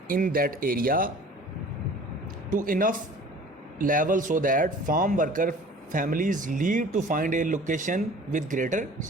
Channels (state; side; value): normal; both; correlation 0.46